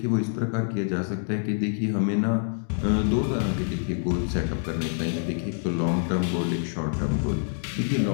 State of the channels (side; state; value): right; silent; digital silence